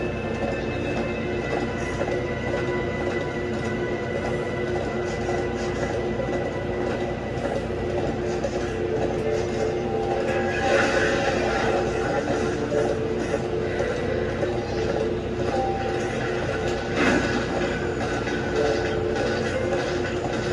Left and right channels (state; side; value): identical; both; correlation 1.00